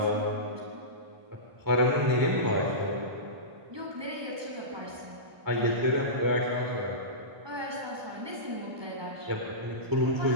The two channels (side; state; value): left; late; 1.2 ms